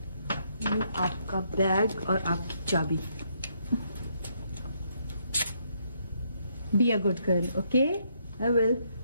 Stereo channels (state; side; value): inverted; both; correlation -0.74